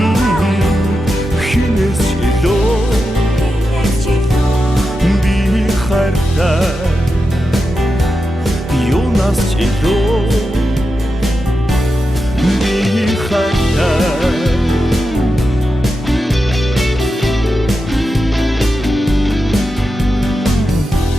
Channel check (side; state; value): both; normal; correlation 0.89